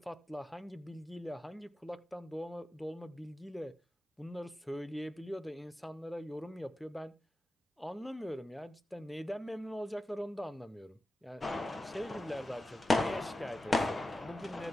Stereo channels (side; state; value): both; normal; correlation 0.93